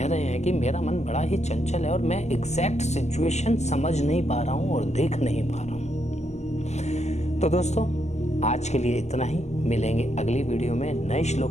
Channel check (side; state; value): right; late; 0.33 ms